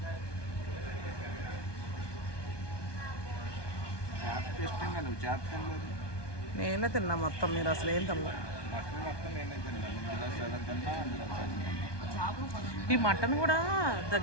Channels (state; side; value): late; right; 1.2 ms